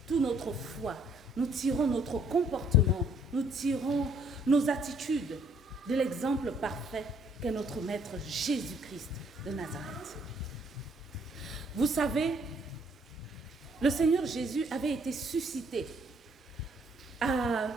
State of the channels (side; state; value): both; normal; correlation 0.65